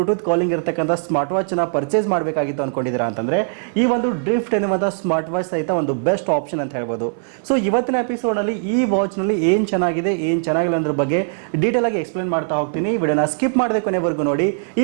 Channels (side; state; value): left; silent; 59 dB below the other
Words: ಕಾಲಿಂಗ್ ಇರತಕ್ಕಂಥ ಸ್ಮಾರ್ಟ್ ವಾಚ್ ನ ಪರ್ಚೇಸ್ ಮಾಡಬೇಕಾಗಿತ್ತು ಅನ್ಕೊಂಡಿದ್ದೀರಾ ಅಂತಂದ್ರೆ ಈ ಒಂದು ಡ್ರಿಫ್ಟ್ ಎನ್ನುವಂಥ ಸ್ಮಾರ್ಟ್ ವಾಚ್ ಸಹಿತ ಒಂದು ಬೆಸ್ಟ್ ಆಪ್ಷನ್ ಅಂತ ಹೇಳ್ಬೋದು. ಸೊ ಇವತ್ತಿನ ಎಪಿಸೋಡ್ ನಲ್ಲಿ ಈ ವಾಚ್ ನಲ್ಲಿ ಏನ್ ಚೆನ್ನಾಗಿದೆ ಏನ್ ಚೆನ್ನಾಗಿಲ್ಲ ಅನ್ನೋದ್ರ ಬಗ್ಗೆ ಡೀಟೇಲ್ ಆಗಿ ಎಕ್ಸ್ಪ್ಲೇನ್ ಮಾಡ್ತಾ ಹೋಗ್ತೀನಿ. ಈ ವಿಡಿಯೋನ ಸ್ಕಿಪ್ ಮಾಡದೆ ಕೊನೆವರೆಗೂ ನೋಡಿ.